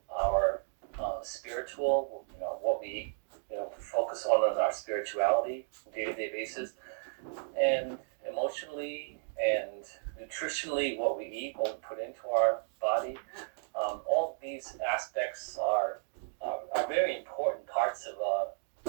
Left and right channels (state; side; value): silent; left; digital silence